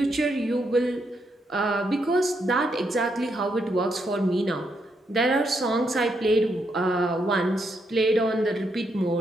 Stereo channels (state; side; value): normal; both; correlation 0.79